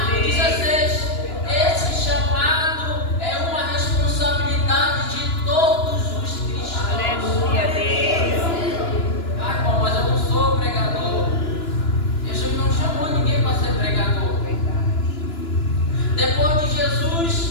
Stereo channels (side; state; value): right; late; 2.9 ms